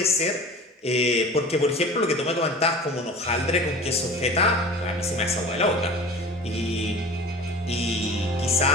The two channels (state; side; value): normal; both; correlation 0.39